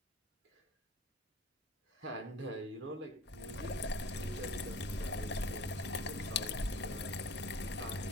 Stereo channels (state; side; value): normal; both; correlation 0.44